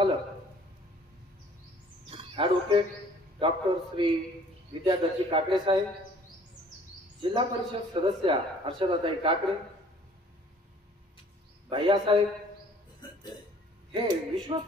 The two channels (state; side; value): normal; both; correlation 0.55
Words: ॲडव्होकेट डॉक्टर श्री विद्याधरजी काकडे साहेब, जिल्हा परिषद सदस्या हर्षदाताई काकडे, भैयासाहेब हे